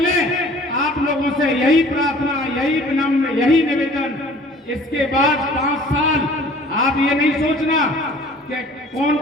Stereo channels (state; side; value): normal; both; correlation 0.50